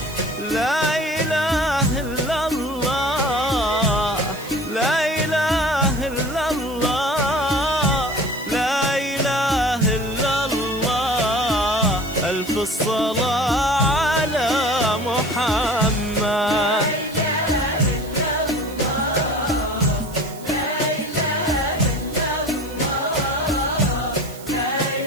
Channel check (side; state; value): right; noise; hiss, 18 dB below the sound